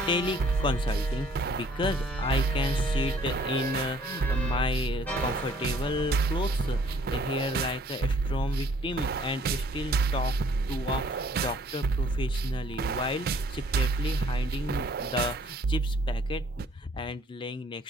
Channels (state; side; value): normal; both; correlation 0.60